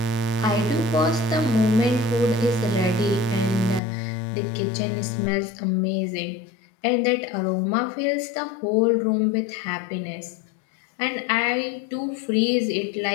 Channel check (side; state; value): right; drops out; at 3.8 s